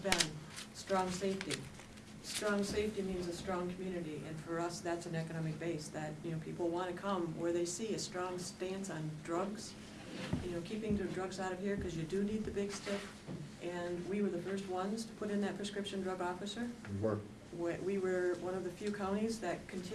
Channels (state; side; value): identical; both; correlation 1.00